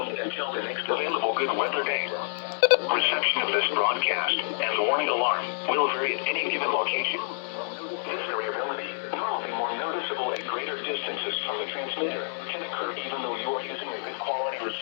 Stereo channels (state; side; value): silent; right; 59 dB below the other